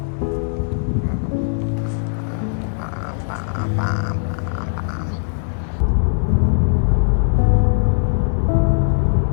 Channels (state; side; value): silent; right; 65 dB below the other